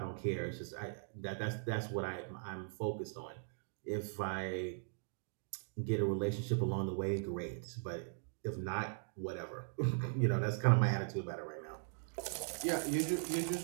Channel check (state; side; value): silent; left; digital silence